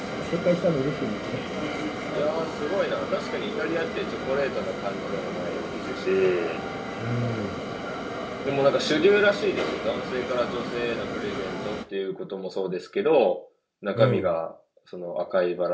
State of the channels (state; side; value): identical; both; correlation 1.00